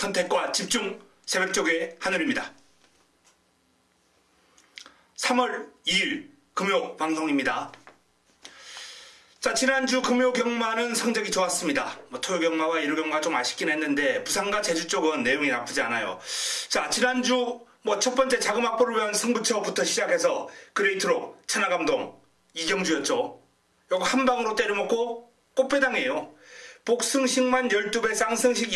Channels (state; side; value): identical; both; correlation 1.00